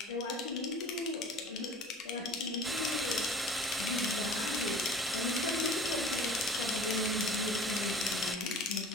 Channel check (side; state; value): both; normal; correlation 0.43